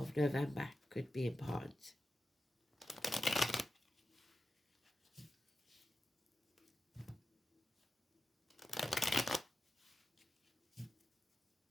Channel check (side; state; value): both; normal; correlation 0.91